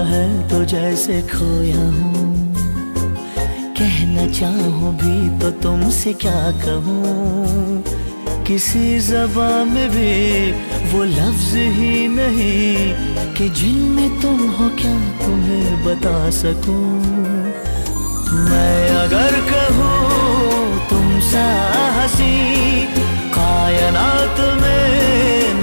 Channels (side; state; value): both; inverted; correlation -1.00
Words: है तो जैसे खोया हूँ, कहना चाहूँ भी तो तुमसे क्या कहूँ। किसी ज़बान में भी वो लफ्ज़ ही नहीं कि जिनमें तुम हो क्या तुम्हें बता सकूँ। मैं अगर कहूँ तुम सा हंसी कायनात में